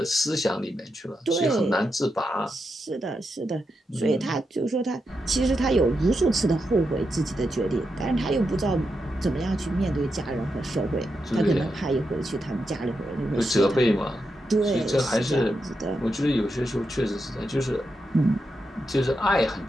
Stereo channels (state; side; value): normal; both; correlation 0.86